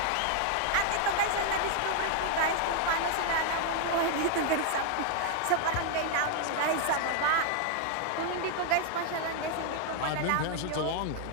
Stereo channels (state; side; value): different; both; correlation 0.00